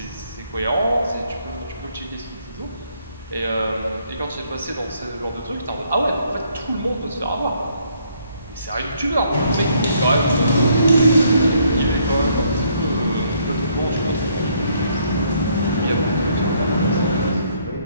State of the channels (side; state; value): both; inverted; correlation -0.68